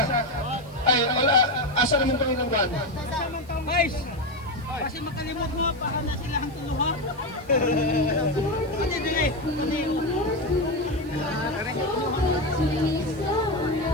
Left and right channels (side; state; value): left; noise; hiss, 27 dB below the sound